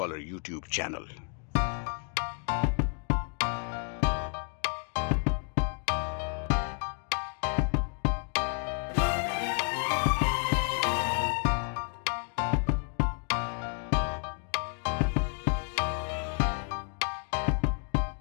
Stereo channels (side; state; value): right; quieter; 39.9 dB